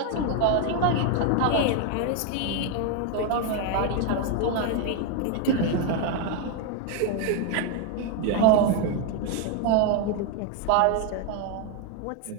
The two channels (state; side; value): different; both; correlation 0.01